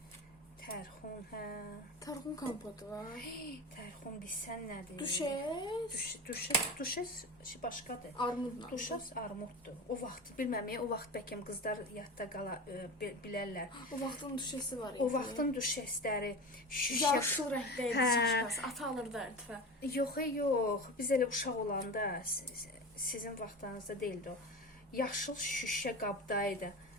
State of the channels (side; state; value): both; normal; correlation 0.28